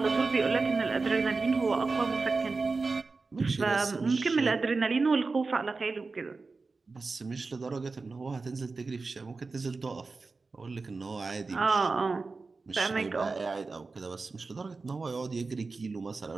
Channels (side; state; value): left; quieter; 4.0 dB